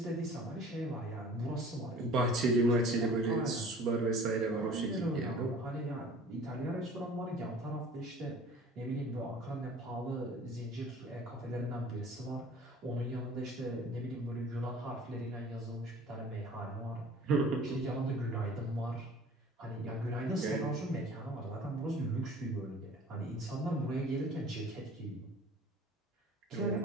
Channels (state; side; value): normal; both; correlation 0.46